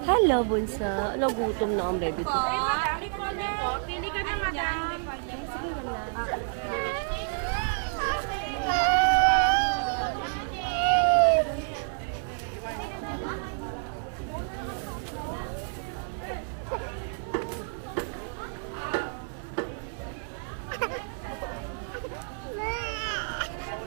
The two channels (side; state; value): left; silent; 58 dB below the other